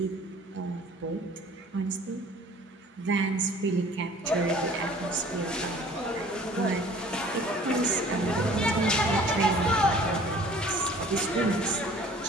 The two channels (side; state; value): both; normal; correlation 0.50